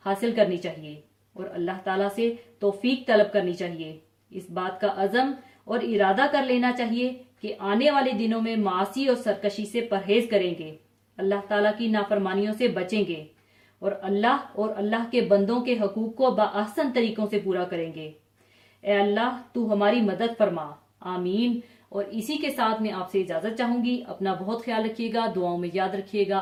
हासिल करनी चाहिए और अल्लाह ताला से तौफीक तलब करनी चाहिए। इस बात का अज़म और इरादा कर लेना चाहिए कि आने वाले दिनों में मासी और सरकशी से परहेज करेंगे, अल्लाह ताला की नाफरमानियों से बचेंगे और अल्लाह के बंदों के हकूक को बाअहसन तरीकों से पूरा करेंगे। ए अल्लाह, तू हमारी मदद फरमा। आमीन। और इसी के साथ मैं आपसे इजाजत चाहूंगी। अपना बहुत ख्याल रखिएगा, दुआओं में याद रखिएगा।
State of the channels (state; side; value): identical; both; correlation 1.00